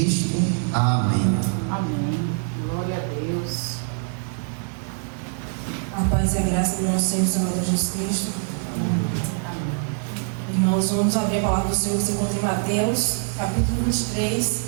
Amém. Amém. Glória a Deus. A paz e a graça do nosso Senhor e Salvador Jesus Cristo. Irmãos, vamos abrir a palavra do Senhor que se encontra em Mateus, capítulo 23,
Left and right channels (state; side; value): silent; left; 59 dB below the other